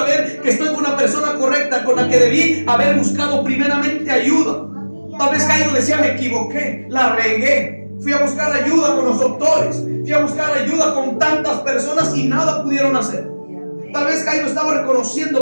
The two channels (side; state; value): both; inverted; correlation -1.00